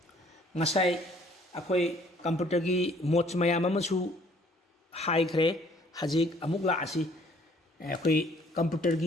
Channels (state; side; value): normal; both; correlation 0.59